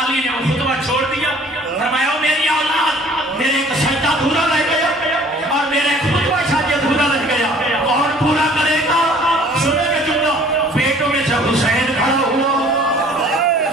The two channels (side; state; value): both; normal; correlation 0.53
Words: علی نے وہ خطبہ چھوڑ دیا، فرمایا میری اولاد میرے ایک سجدہ ادھورا رہ گیا اور میرا ایک خطبہ شاید ادھورا رہ گیا، کون پورا کرے گا؟ سنے گا جملہ، بیٹوں میں سے حسین کھڑا ہوا،